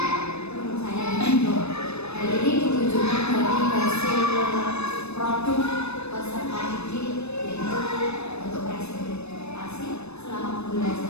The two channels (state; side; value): late; right; 0.80 ms